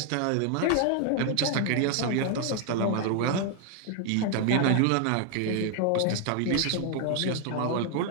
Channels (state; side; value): different; both; correlation 0.00